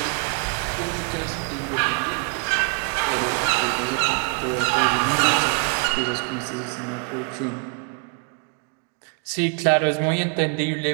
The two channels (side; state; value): left; quieter; 39.3 dB